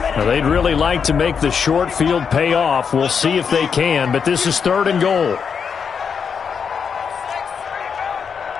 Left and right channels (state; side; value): quieter; right; 6.5 dB